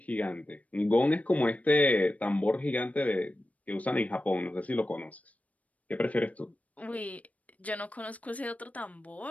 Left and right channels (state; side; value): late; right; 0.069 ms